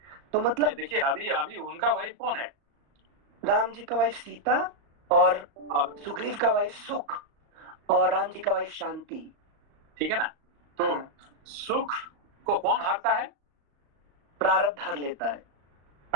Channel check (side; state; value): left; late; 35 ms